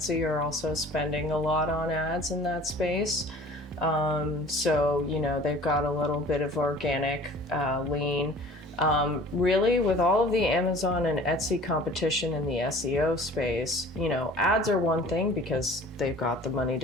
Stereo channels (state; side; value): normal; both; correlation 0.46